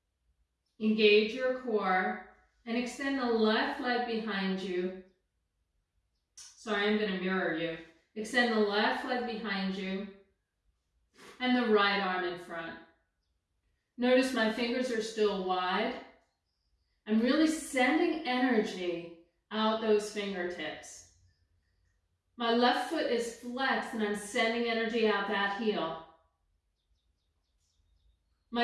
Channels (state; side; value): identical; both; correlation 1.00